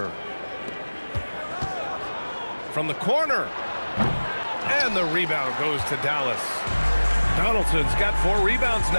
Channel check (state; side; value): inverted; both; correlation -1.00